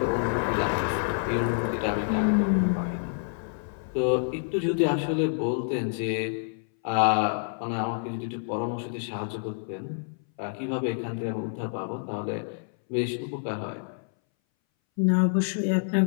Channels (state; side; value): silent; right; 60 dB below the other